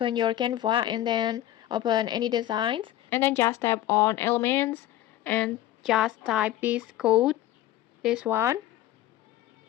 your Canva and then open any designs, and then just tap on elements and just type this code, this one,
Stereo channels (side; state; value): right; quieter; 13.9 dB